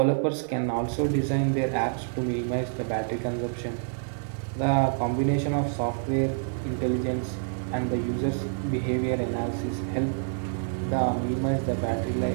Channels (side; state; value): left; silent; 60 dB below the other